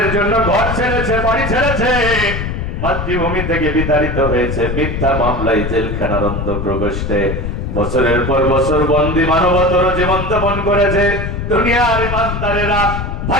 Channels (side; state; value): left; noise; rumble, 3 dB below the sound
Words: জন্য ঘর ছেড়েছে, বাড়ি ছেড়েছে, মাতৃভূমি থেকে বিতাড়িত হয়েছে, মিথ্যা মামলায় জেলখানার অন্ধ প্রকোষ্ঠে বছরের পর বছর বন্দী মানবতর জীবন যাপন করেছে। দুনিয়ার ঈমানদারেরা